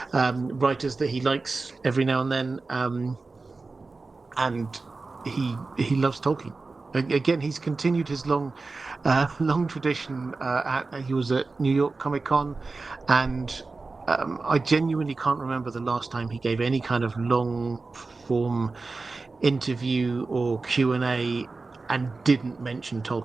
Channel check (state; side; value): quieter; left; 3.8 dB